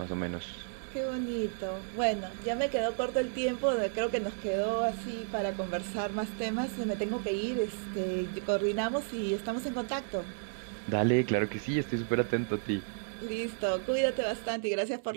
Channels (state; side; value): silent; left; digital silence